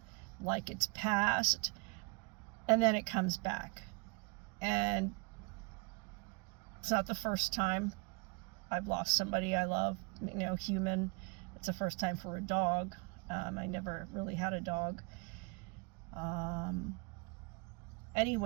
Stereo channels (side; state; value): left; quieter; 31.4 dB